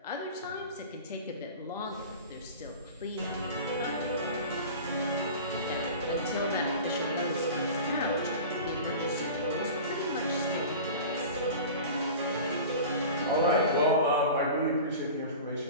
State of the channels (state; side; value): inverted; both; correlation -0.36